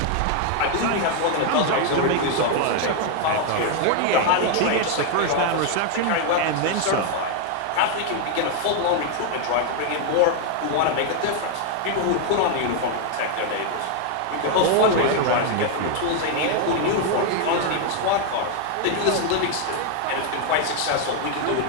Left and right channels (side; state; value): both; different; correlation 0.00